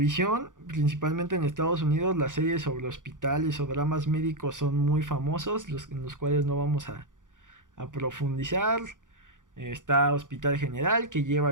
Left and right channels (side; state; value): left; late; 0.88 ms